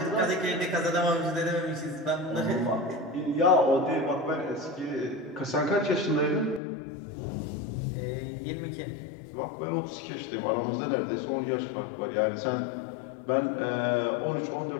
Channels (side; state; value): right; drops out; at 6.6 s